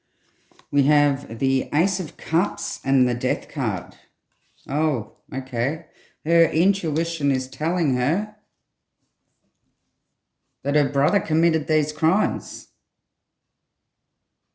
We have the Ace of Cups and the Death card. Oh, okay. Her intuition is telling her that her brother committed these crimes.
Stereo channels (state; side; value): identical; both; correlation 1.00